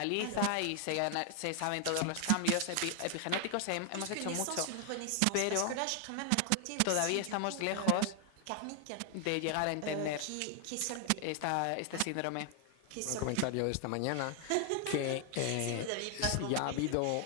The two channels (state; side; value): different; both; correlation 0.00